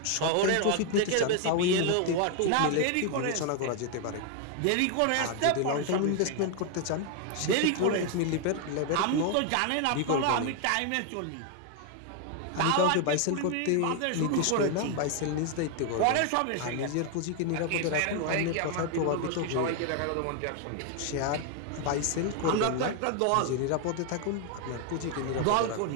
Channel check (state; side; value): different; both; correlation 0.01